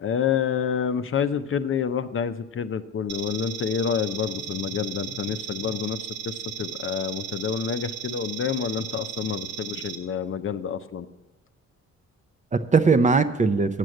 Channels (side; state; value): both; normal; correlation 0.34